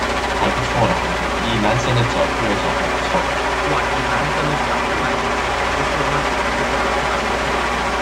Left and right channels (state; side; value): identical; both; correlation 1.00